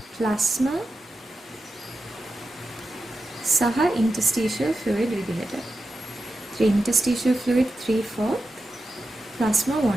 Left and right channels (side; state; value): both; normal; correlation 0.91